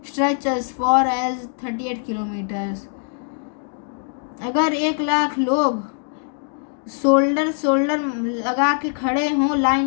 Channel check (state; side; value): silent; right; 60 dB below the other